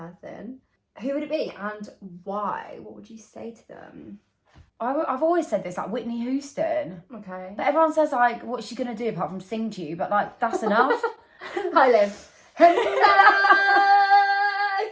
who would it be and why? What would you say to them? I've always said this, like Whitney Houston. Okay. But everyone says, like, what's she going to do apart from sing to you? But, like, that's enough. Hi, Liv. Hello.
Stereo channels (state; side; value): identical; both; correlation 1.00